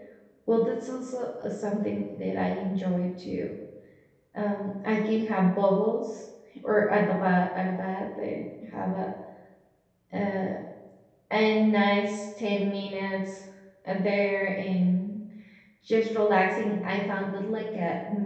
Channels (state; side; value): identical; both; correlation 1.00